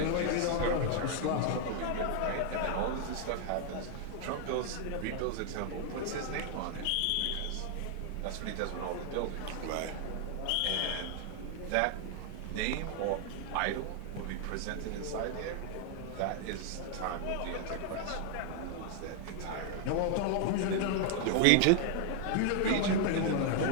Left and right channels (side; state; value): both; different; correlation 0.00